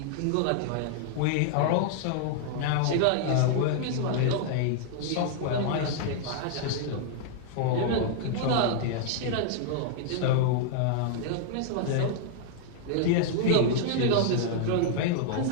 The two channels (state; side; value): different; both; correlation -0.01